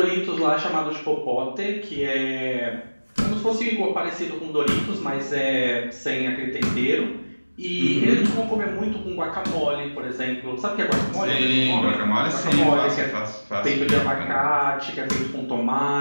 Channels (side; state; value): both; inverted; correlation -1.00